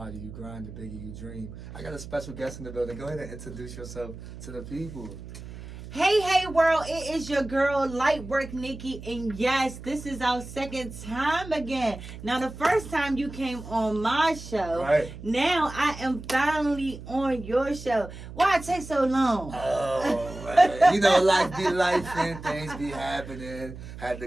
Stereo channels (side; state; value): right; noise; hum, 13 dB below the sound